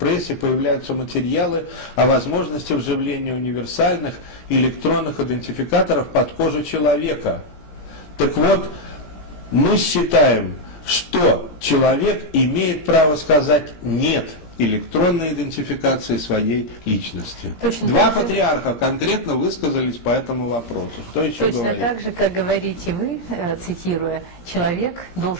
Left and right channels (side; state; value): right; late; 17 ms